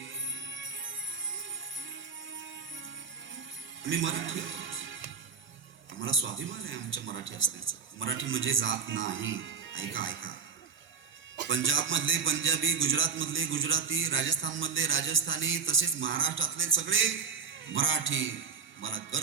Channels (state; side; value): quieter; left; 5.8 dB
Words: आम्ही मराठी, आम्हाला स्वाभिमान आहे आमच्या मराठी असण्याचा. मराठी म्हणजे जात नाही. ऐका ऐका, पंजाब मधले पंजाबी, गुजरात मधले गुजराती, राजस्थान मधले राजस्थानी, तसेच महाराष्ट्रातले सगळे मराठी. मला